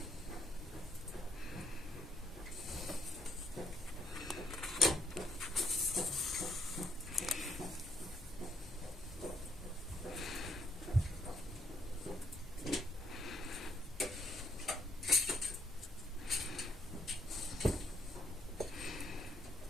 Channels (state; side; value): normal; both; correlation 0.72